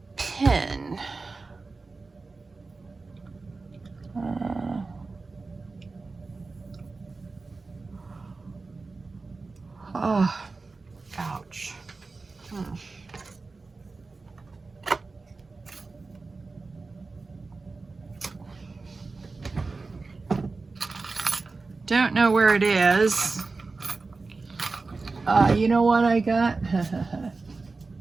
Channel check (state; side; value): quieter; left; 3.9 dB